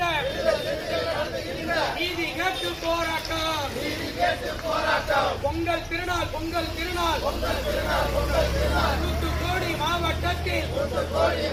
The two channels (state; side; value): identical; both; correlation 1.00